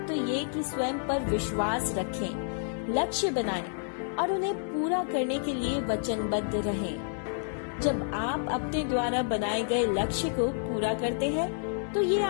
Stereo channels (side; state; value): right; silent; 58 dB below the other